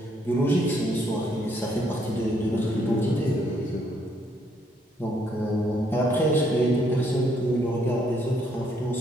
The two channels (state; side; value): normal; both; correlation 0.70